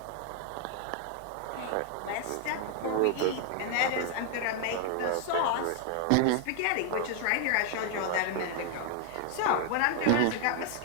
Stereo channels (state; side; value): different; both; correlation 0.00